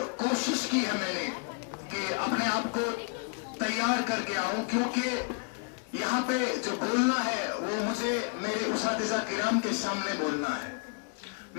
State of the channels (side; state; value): right; quieter; 36.4 dB